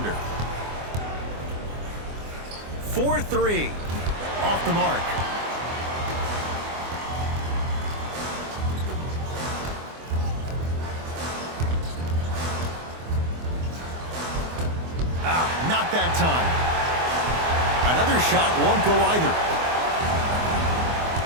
4-3. Off the mark. Not that time. Another shot won't go either.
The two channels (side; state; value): left; late; 24 ms